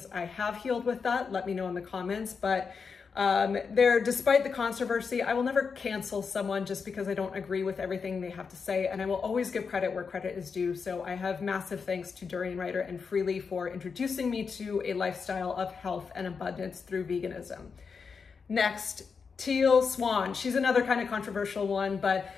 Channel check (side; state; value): right; quieter; 5.5 dB